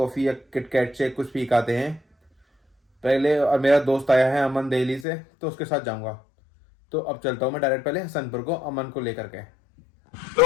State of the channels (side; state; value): right; drops out; at 5.1 s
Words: या किटकैट से कुछ पी के आते हैं पहले। और मेरा दोस्त आया है अमन दिल्ली से, तो उसके साथ जाऊंगा। तो अब चलता हूँ मैं डायरेक्ट पहले हसनपुर को, अमन को लेकर के। तो